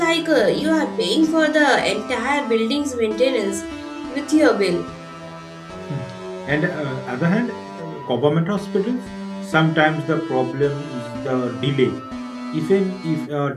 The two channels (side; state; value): both; identical; correlation 1.00